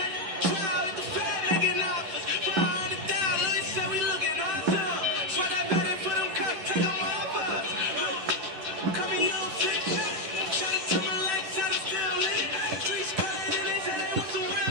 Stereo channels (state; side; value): late; left; 10 ms